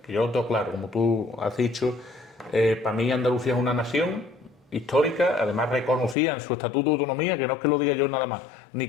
que yo lo tengo claro, como tú has dicho. Para mí Andalucía es una nación histórica, además reconocida en su estatuto de autonomía, que no es que lo diga yo nada más, ni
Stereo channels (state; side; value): drops out; right; at 6.2 s